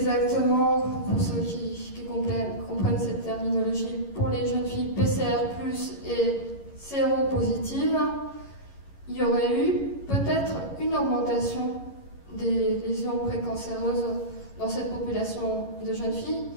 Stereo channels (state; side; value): late; right; 11 ms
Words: pour ceux qui comprennent cette terminologie, pour les jeunes filles PCR+ et séropositives, il y aurait eu peut-être une augmentation des lésions précancéreuses dans cette population de jeunes filles,